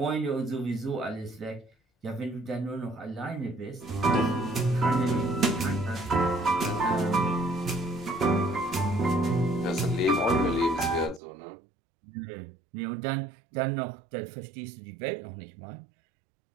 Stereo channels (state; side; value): drops out; left; at 11.2 s